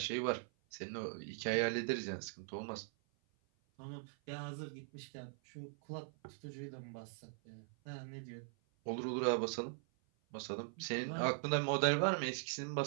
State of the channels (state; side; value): silent; left; 50 dB below the other